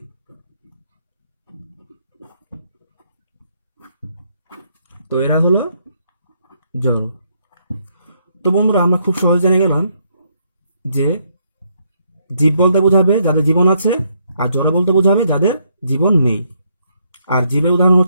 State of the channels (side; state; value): both; inverted; correlation -0.73